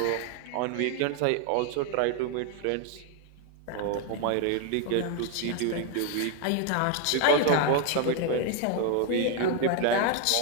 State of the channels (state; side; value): different; both; correlation 0.01